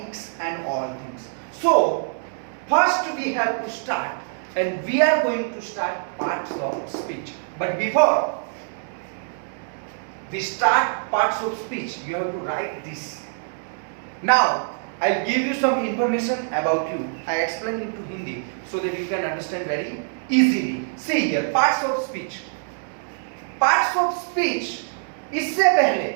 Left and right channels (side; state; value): left; silent; digital silence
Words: and all things. So, first we have to start, and we are going to start parts of speech. But before we start parts of speech, you have to write this. Now, I'll give you some information about you. I explain into Hindi so that you can understand very easily. See here, parts of speech. Parts of speech, इससे पहले